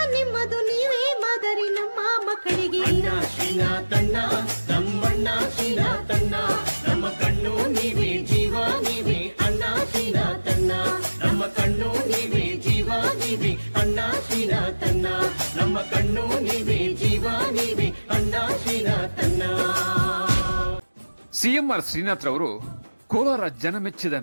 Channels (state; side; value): inverted; both; correlation -1.00